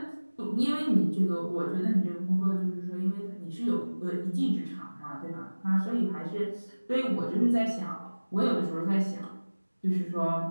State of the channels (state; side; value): inverted; both; correlation -1.00